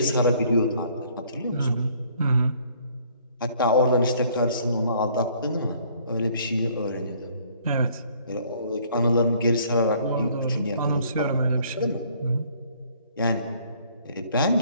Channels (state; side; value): inverted; both; correlation -0.60